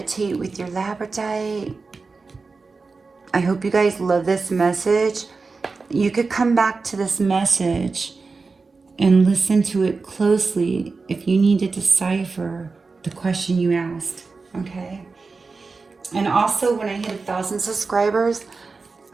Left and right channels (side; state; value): left; quieter; 4.2 dB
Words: with your labradorite. I hope you guys love this message. You could come back to this message and listen to it closely if you need to decipher the question you asked, okay? And also, when I hit 1,000 subscribers,